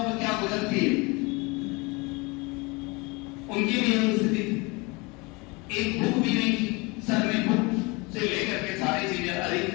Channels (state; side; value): quieter; right; 26.8 dB